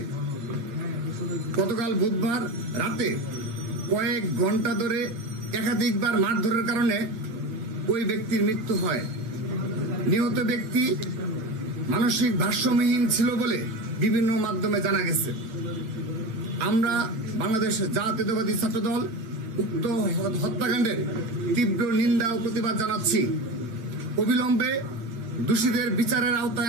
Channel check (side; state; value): left; late; 8.9 ms